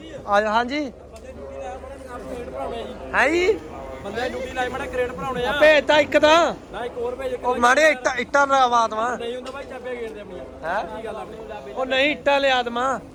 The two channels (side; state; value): both; identical; correlation 1.00